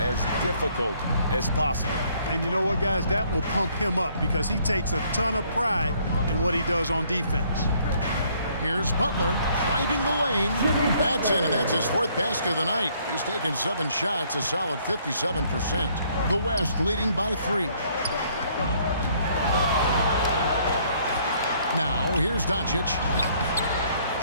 difficult as possible. And you know what, guys? That will pump him up because he takes a ton of pride in what he does on defense. Here's Butler driving the lane. That's in, and that's his 4th basket of the night. He's taken 7 shots, a solid 57%. The West leading by 3. Now, here's Doncic.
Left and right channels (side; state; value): both; inverted; correlation -0.65